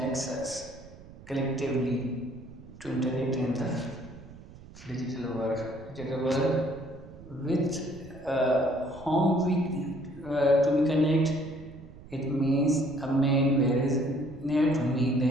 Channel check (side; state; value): right; noise; rumble, 18 dB below the sound